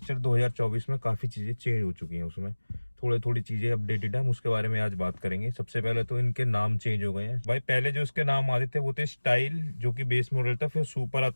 2024 में काफ़ी चीज़ें चेंज हो चुकी हैं, उसमें थोड़ी चीज़ें अपडेटेड है, हम उसके बारे में आज बात करेंगे। सबसे पहले तो इनके नाम चेंज हो गए हैं भाई। पहले जो इसके नाम आते थे वो थे स्टाइल, जो कि बेस मॉडल था, फिर सुपर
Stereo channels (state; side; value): inverted; both; correlation -1.00